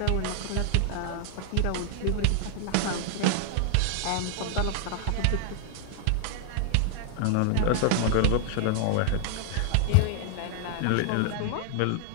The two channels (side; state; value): both; different; correlation 0.00